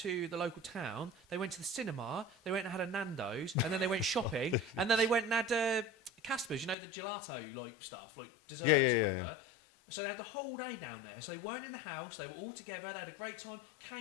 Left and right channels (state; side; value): drops out; right; at 6.8 s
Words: the local town. They went to the cinema, they went and had a Nando's, and then they went shopping, and then they went and had Casper's, the gelato like stuff, like desserts or whatever. So they had the whole day down there. So they weren't in the house, they were all together, they had a great time,